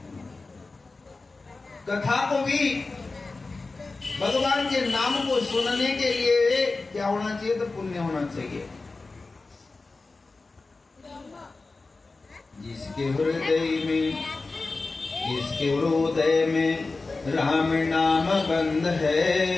कथा को भी भगवान के नाम को सुनने के लिए क्या होना चाहिए? तो पुण्य होना चाहिए। जिसके हृदय में राम नाम बंद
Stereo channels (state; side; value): quieter; right; 3.6 dB